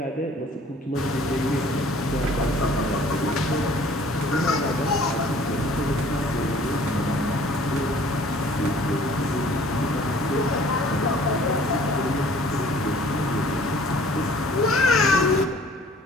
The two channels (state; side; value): normal; both; correlation 0.53